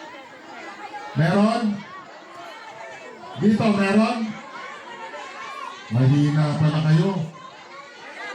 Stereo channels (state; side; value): identical; both; correlation 1.00